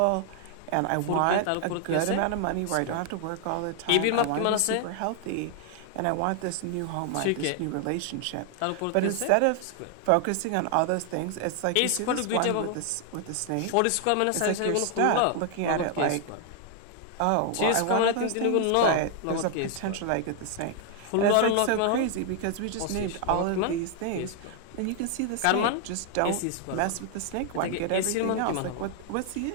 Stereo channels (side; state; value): both; different; correlation 0.00